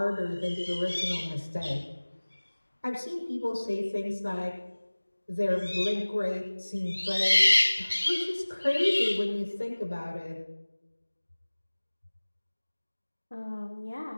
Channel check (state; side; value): inverted; both; correlation -1.00